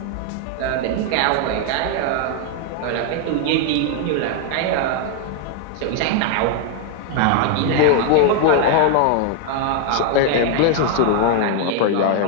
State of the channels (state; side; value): different; both; correlation 0.01